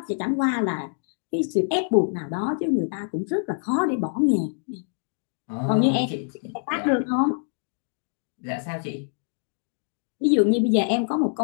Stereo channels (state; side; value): silent; right; digital silence